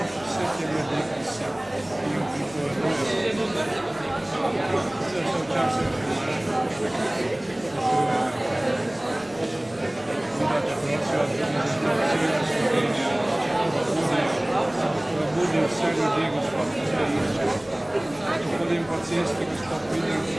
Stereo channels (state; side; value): noise; left; hum, 25 dB below the sound